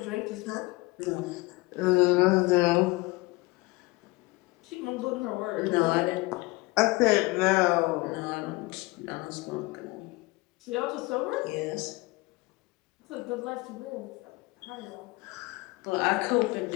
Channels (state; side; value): quieter; right; 22.9 dB